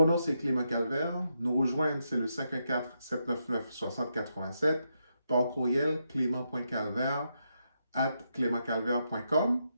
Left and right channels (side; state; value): both; inverted; correlation -0.82